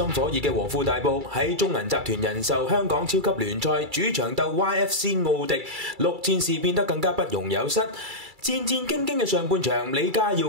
火熱嘅和富大埔喺中銀集團人壽香港超級聯賽主場鬥 YFC 奧迪，6戰事變得更加不容有失。戰戰兢兢嘅上半場，李家耀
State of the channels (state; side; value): late; left; 2.3 ms